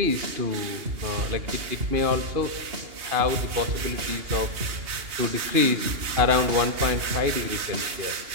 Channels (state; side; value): late; left; 2.8 ms